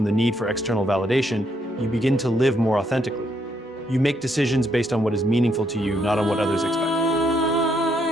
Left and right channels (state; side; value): normal; both; correlation 0.74